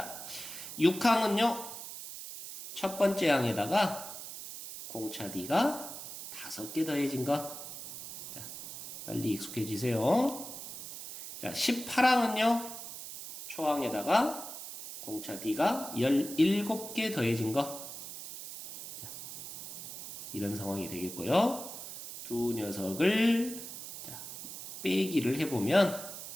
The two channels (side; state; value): right; noise; hiss, 10 dB below the sound